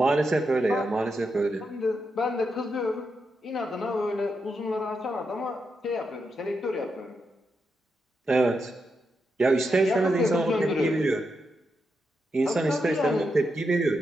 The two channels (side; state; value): both; normal; correlation 0.84